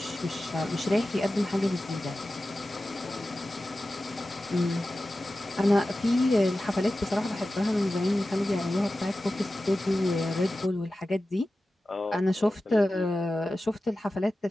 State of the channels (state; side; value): normal; both; correlation 0.94